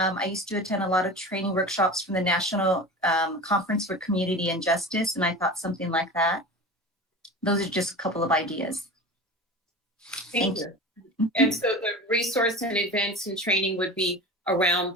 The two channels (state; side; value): normal; both; correlation 0.32